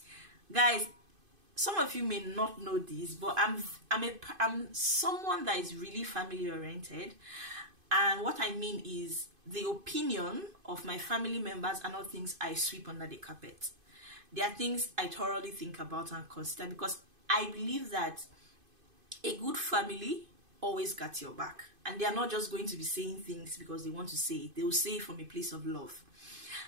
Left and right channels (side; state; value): left; late; 2.5 ms